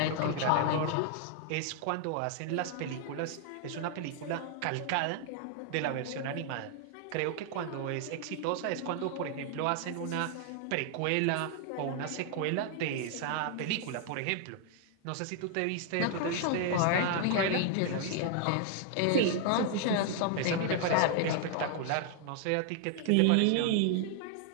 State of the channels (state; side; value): different; both; correlation 0.00